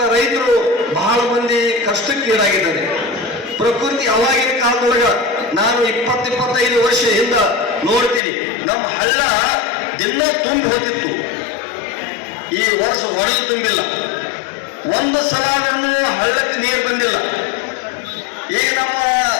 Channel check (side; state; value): right; drops out; at 8.2 s